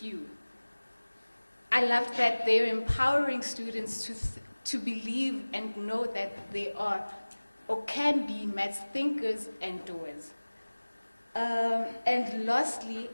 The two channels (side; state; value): both; inverted; correlation -1.00